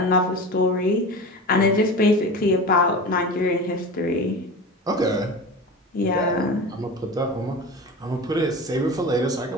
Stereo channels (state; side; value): normal; both; correlation 0.31